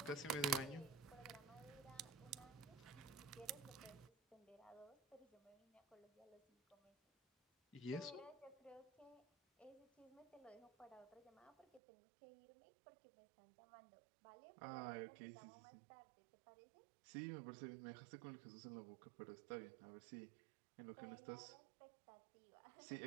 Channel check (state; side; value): drops out; left; at 11.8 s